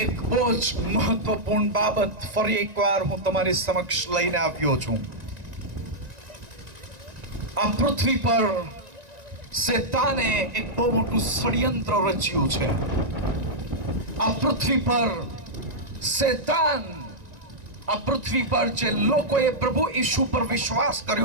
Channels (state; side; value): late; left; 1.9 ms